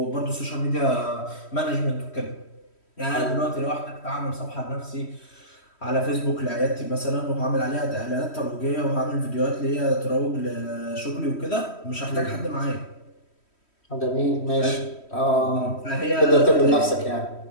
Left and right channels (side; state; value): right; late; 3.1 ms